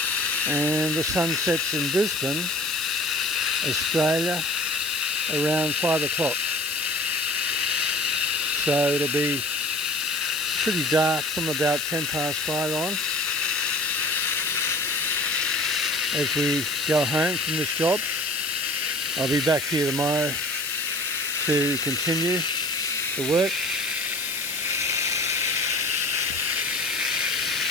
And the sun sets in Brisbane, Australia, around 5 o'clock. So it'll be pretty dark from about 10 past 5 on as we go home from this job. I'll be back here tomorrow to continue the work.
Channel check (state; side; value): noise; left; hiss, 7 dB below the sound